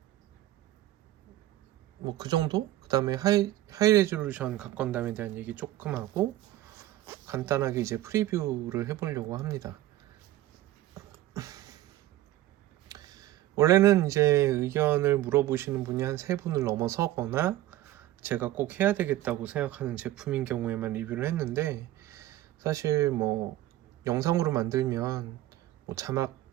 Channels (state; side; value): quieter; left; 15.0 dB